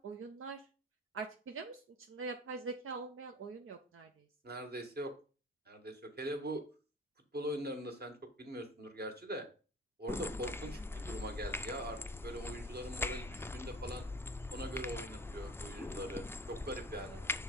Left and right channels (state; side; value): normal; both; correlation 0.41